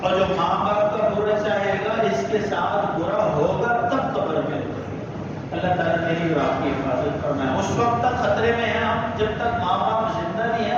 اور جو ماں باپ کا برا چاہے گا اس کے ساتھ برا ہوگا تب قبر میں. اللہ تعالیٰ میری اور آپ کی حفاظت فرمائے. اس وقت تک خطرے میں ہیں ہم جب تک ماں باپ زندہ نہیں ہیں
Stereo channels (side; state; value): both; identical; correlation 1.00